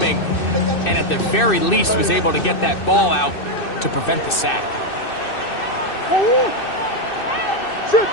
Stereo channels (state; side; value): late; right; 2.6 ms